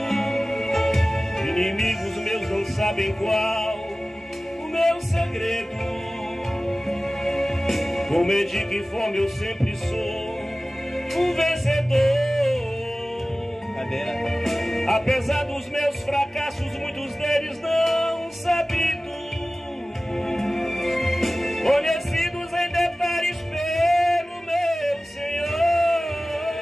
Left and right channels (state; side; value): normal; both; correlation 0.97